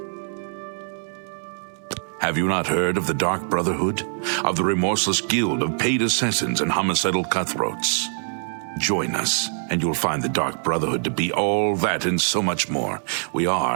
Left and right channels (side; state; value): left; silent; digital silence